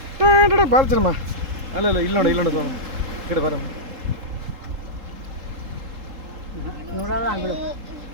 ಬಾಲ್ ಚೆನ್ನಮ್ಮ ಅಲ್ಲ ಇಲ್ಲಿ ನೋಡು ಇಲ್ಲಿ ನೋಡು ಈ ಕಡೆ ಬರಮ್ಮ ನೋಡಲ್ಲ ಬಿಡು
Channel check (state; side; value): late; left; 3.8 ms